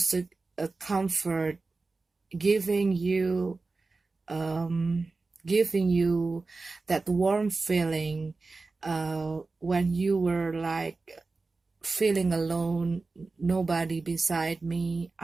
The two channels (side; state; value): left; quieter; 3.8 dB